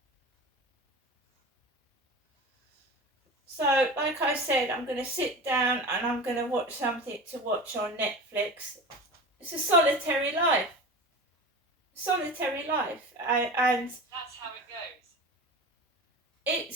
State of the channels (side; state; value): both; normal; correlation 0.31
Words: So, like I said, I'm going to sit down and I'm going to watch something to watch on Netflix. It's a solitary life. Solitary life. And that's how it goes.